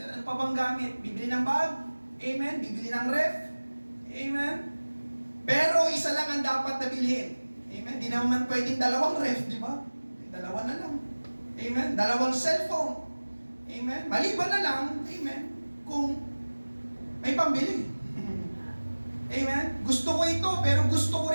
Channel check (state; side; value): inverted; both; correlation -1.00